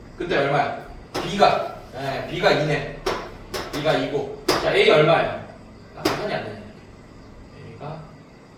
그때 얼마야? b가 b가 2네. b가 2고. 자, a 얼마야? 계산이 안 되네. a가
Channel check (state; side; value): identical; both; correlation 1.00